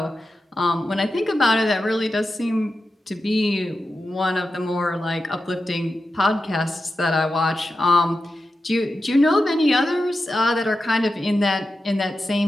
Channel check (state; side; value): normal; both; correlation 0.90